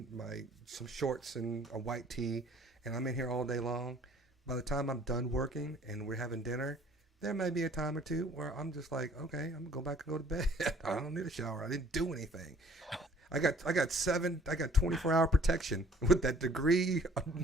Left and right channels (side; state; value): both; normal; correlation 0.56